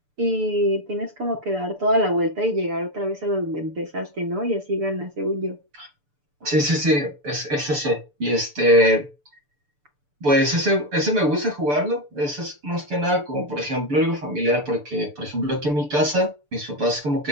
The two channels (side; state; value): left; late; 6.8 ms